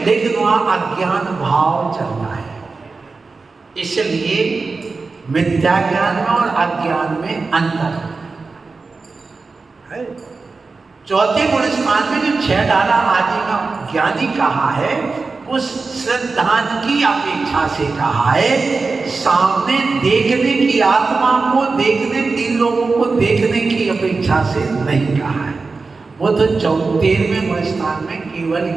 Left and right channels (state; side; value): quieter; left; 4.1 dB